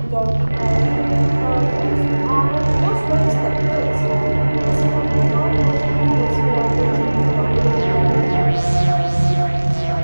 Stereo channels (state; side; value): inverted; both; correlation -1.00